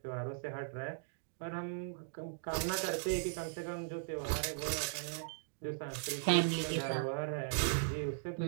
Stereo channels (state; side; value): silent; left; digital silence